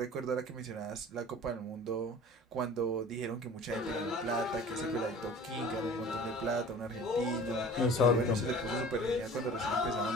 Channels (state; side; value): normal; both; correlation 0.43